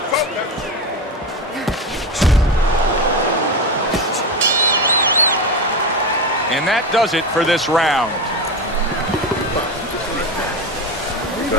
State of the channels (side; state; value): both; normal; correlation 0.19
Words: focus. And that does it for this round.